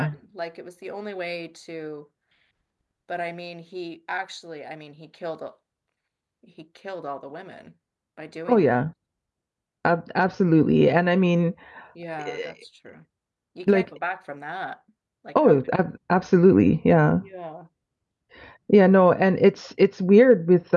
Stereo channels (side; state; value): both; identical; correlation 1.00